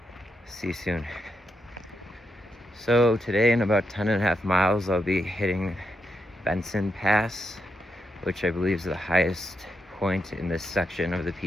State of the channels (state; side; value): normal; both; correlation 0.83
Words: See you soon. So today in about 10.5 miles, I'll be hitting Benson Pass, which I believe is the highest point in this section of the